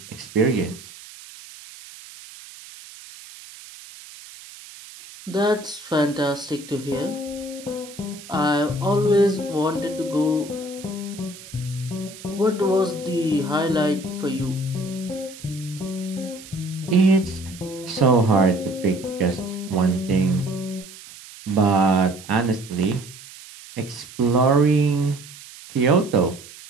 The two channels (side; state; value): right; noise; hiss, 17 dB below the sound